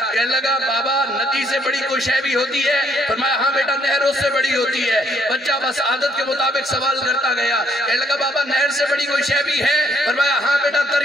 کہنے لگا بابا ندی سے بڑی کوئی شے بھی ہوتی ہے؟ فرمایا ہاں بیٹا نہر اس سے بڑی ہوتی ہے۔ بچہ بس عادت کے مطابق سوال کرتا گیا، کہنے لگا بابا نہر سے بڑی کوئی شے بھی ہے؟ فرمایا ہاں بیٹا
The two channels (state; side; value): normal; both; correlation 0.67